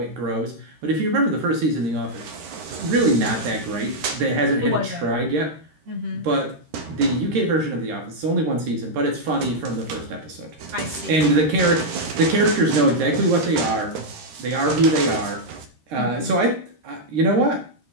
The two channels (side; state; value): left; late; 13 ms